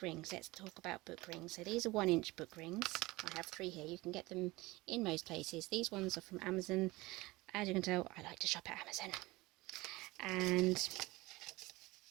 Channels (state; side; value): quieter; left; 21.2 dB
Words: rings, let's talk about book rings. So these are 1-inch book rings. I have 3 here. You can get them in most places. These ones are from Amazon. As you can tell, I like to shop at Amazon. And